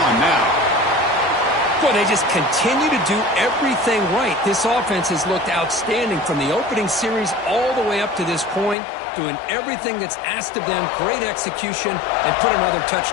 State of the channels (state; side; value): drops out; right; at 8.8 s